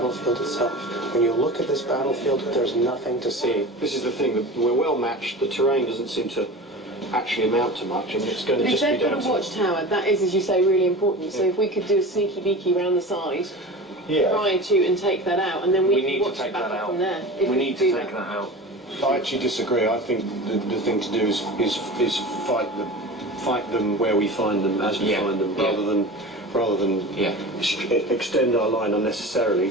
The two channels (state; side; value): normal; both; correlation 0.33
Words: itself. When you look at this battlefield, there's nothing to see. This is the thing, that we're well matched. The terrain doesn't seem to actually amount to much, and it's going to just be down to... a watchtower, that is, as you say, really important. So if we could do a sneaky beaky round the side, try to and take that out, and then we can watch the battle from there. We need to take that out. I actually disagree. I think the thing to do is fight them where we find them, as we find them, rather than extend our line unnecessarily